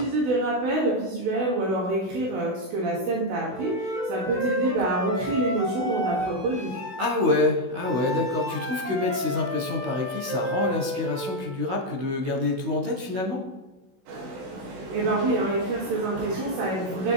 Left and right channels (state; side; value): late; left; 16 ms